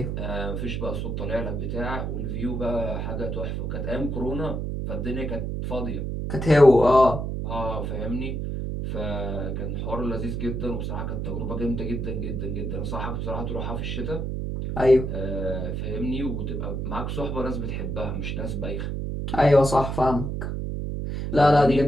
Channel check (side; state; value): right; noise; hum, 3 dB below the sound